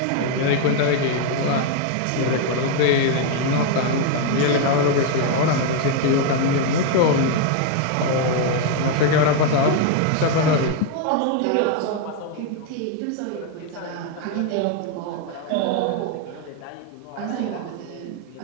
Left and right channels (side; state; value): both; different; correlation 0.00